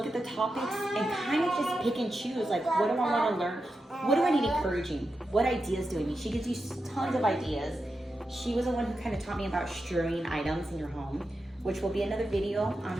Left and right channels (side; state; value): both; normal; correlation 0.89